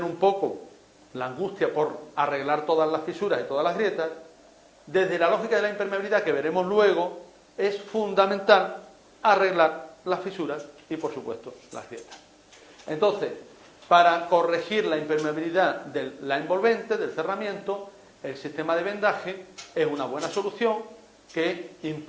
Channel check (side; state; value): both; identical; correlation 1.00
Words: un poco la angustia por arreglar todas las fisuras y todas las grietas, desde la lógica de la impermeabilidad que veremos luego, es fundamental arreglar las fisuras y, por supuesto, las grietas. Entonces, para corregir la impermeabilidad de la envolvente, del cerramiento, el sistema de vendaje es una buena solución que